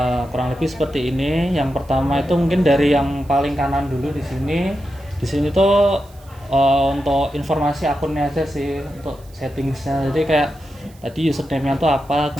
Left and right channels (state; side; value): noise; right; hiss, 28 dB below the sound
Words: Kurang lebih seperti ini. Yang pertama itu mungkin dari yang paling kanan dulu di sini. Di sini tuh untuk informasi akunnya aja sih, untuk settingsnya. Jadi kayak tadi username-nya tuh apa,